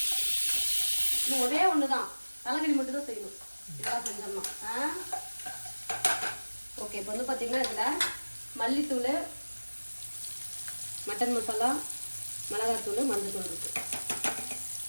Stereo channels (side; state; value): both; inverted; correlation -1.00